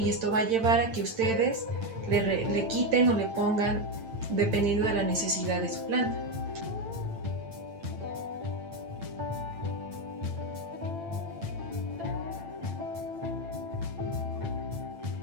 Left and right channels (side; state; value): left; late; 8.9 ms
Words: esto va a llevar a que ustedes le quiten o le pongan dependiendo de la necesidad de su planta.